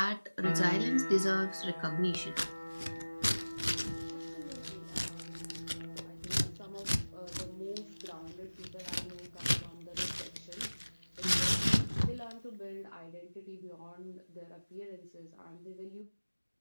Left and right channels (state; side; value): inverted; both; correlation -1.00